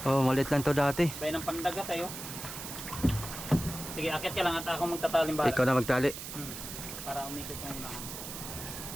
Oh, maliit lang to dati. Bayan ng pandagat tayo. Sige, akit ka lang at ako magtataling bala. Ikaw na magtali. Para umikot yung unahan.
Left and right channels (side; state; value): right; noise; hiss, 9 dB below the sound